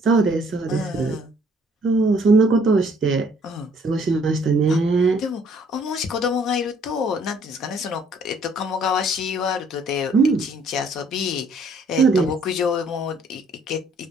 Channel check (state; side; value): normal; both; correlation 0.62